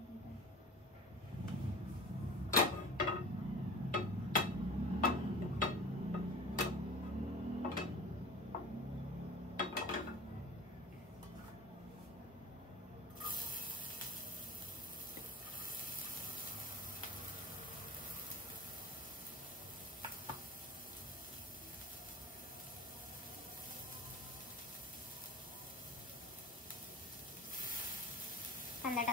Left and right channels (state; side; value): normal; both; correlation 0.38